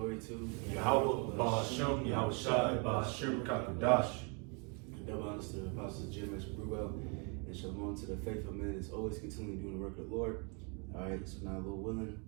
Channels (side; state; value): left; quieter; 35.3 dB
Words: to Yahweh, Ba'ashem, Yahweh Shai, Ba'ashem, Kakudash. Double honors to the apostles GMS Col and Shalom to the faithful men that's always continually doing the work of the Lord. All right, so now, Lord willing,